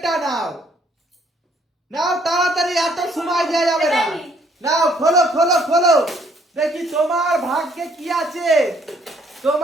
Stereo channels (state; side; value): normal; both; correlation 0.65